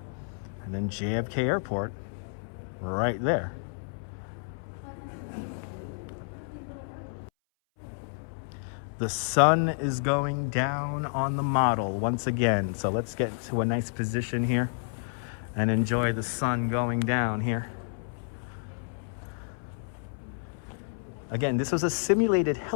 And then JFK Airport right there. The sun is going down on the model once again. So let's get to a nice position here and enjoy the sun going down here. Again, this was a simulated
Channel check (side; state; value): right; silent; 58 dB below the other